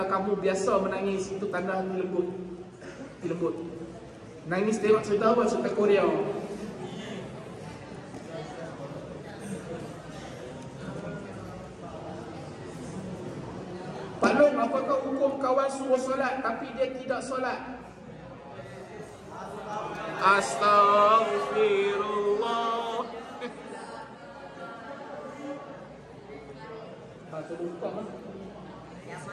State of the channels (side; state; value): both; identical; correlation 1.00